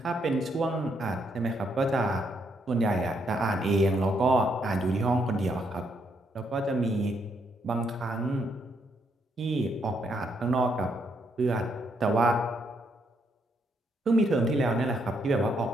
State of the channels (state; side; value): normal; both; correlation 0.75